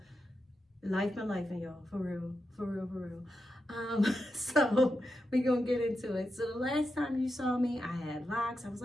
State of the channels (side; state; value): both; normal; correlation 0.88